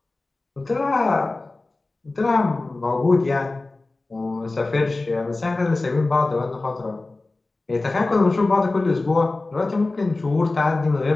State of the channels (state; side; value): quieter; right; 3.2 dB